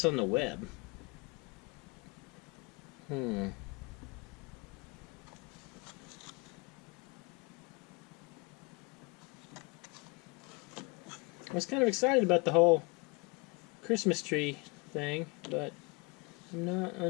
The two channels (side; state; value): right; quieter; 29.4 dB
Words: on the web. I was kind of excited about the whole Christmas tree thing, but I'm not